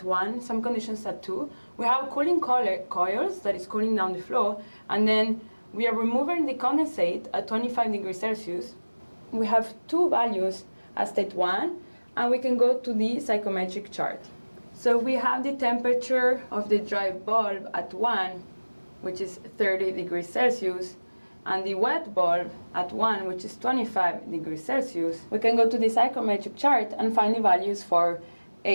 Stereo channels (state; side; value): inverted; both; correlation -1.00